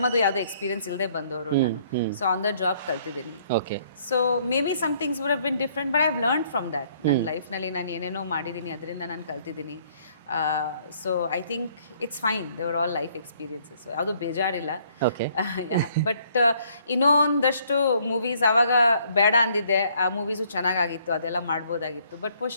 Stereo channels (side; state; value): both; inverted; correlation -0.64